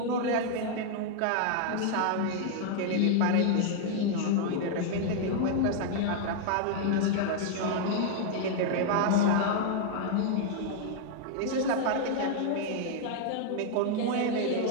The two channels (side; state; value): both; different; correlation 0.00